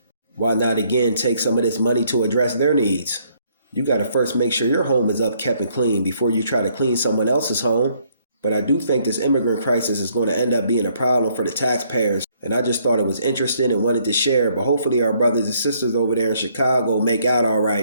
Why not again take some of this money to address their needs? You got to first make sure your home is up, kept, and clean before you try to clean someone else's home. But I do think this immigrant crisis is going to end up being a problem for the taxpayers. And I just thought it was interesting and wanted to share. But hopefully our brothers and sisters over there in Chicago make out all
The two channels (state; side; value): inverted; both; correlation -0.67